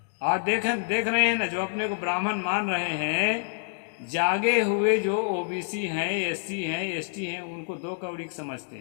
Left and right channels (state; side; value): silent; right; digital silence